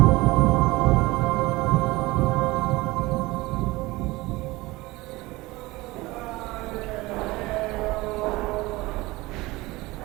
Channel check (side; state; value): left; quieter; 20.9 dB